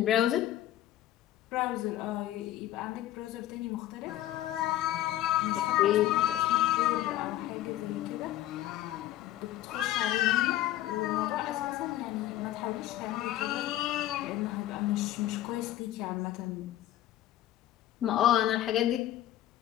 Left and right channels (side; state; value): right; quieter; 13.7 dB